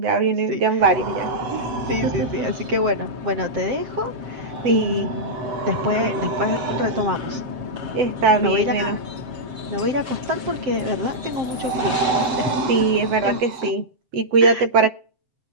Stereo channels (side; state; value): left; late; 7.6 ms